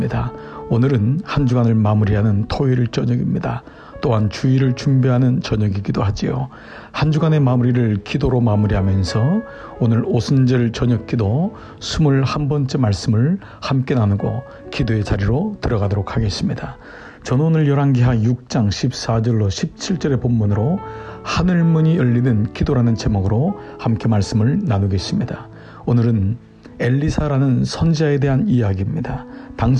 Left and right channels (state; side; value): identical; both; correlation 1.00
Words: 오늘은 한 주간을 마무리하는 토요일 저녁입니다. 또한 주일을 준비하는 저녁이기도 하지요. 한 주간의 마무리를 기도로 마무리하면서 오늘 오순절 저녁 기도 21번째 말씀을 함께 나누고 기도의 자리로 들어가도록 하겠습니다. 저는 오늘 열왕기하 6장 14절로 17절의 본문으로 하늘문이 열리는 기도라는 제목으로 함께 말씀을 나누겠습니다. 오늘은 엘리사라는 선지자에 대한 이야기입니다.